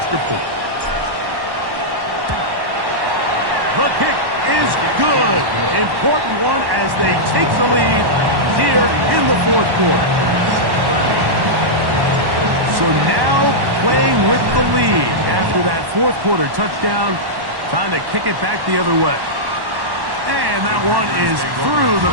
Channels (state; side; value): late; left; 1.1 ms